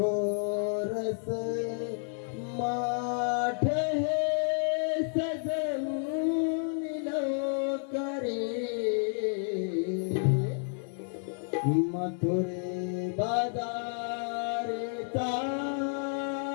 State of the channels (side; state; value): right; silent; 57 dB below the other